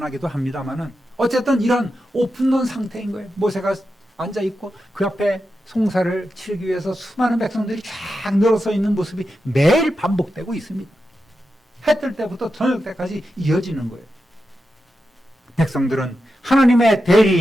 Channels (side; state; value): both; normal; correlation 0.89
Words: 합니다만은 어쨌든 이런 오픈런 상태인 거예요. 모세가 앉아있고 그 앞에 송사를 치르기 위해서 수많은 백성들이 쫙 늘어서 있는 모습이 매일 반복되고 있습니다. 해 뜰 때부터 저녁 때까지 이어지는 거예요. 백성들은 하나님의